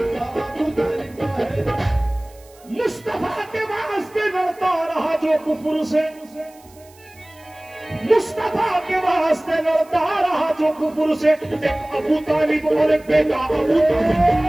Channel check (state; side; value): noise; right; hiss, 27 dB below the sound